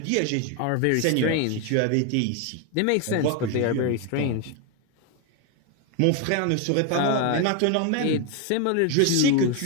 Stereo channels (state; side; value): different; both; correlation 0.01